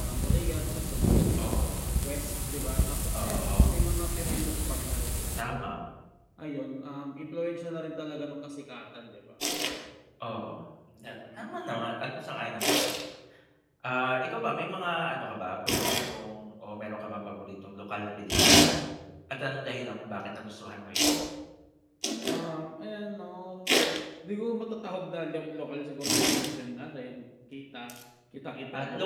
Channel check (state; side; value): identical; both; correlation 1.00